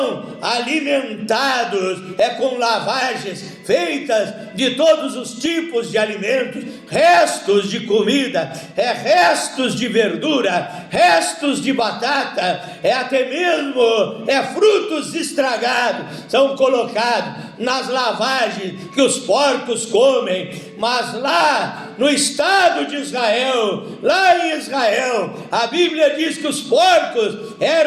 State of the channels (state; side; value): identical; both; correlation 1.00